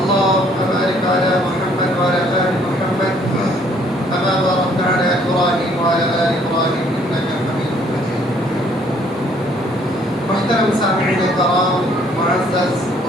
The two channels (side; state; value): both; normal; correlation 0.62